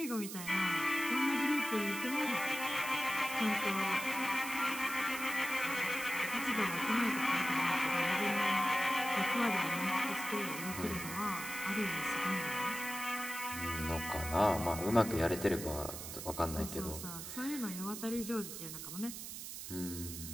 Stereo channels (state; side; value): noise; right; hiss, 8 dB below the sound